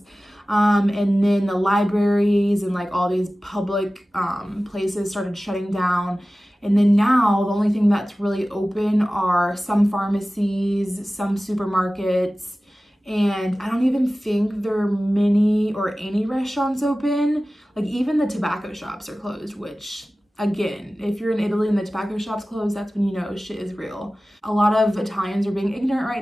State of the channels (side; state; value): both; normal; correlation 0.96